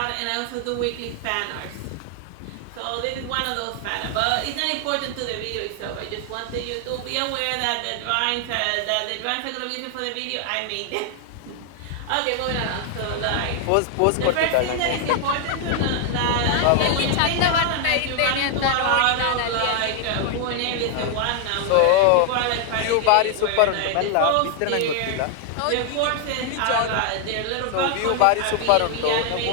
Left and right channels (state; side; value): different; both; correlation 0.00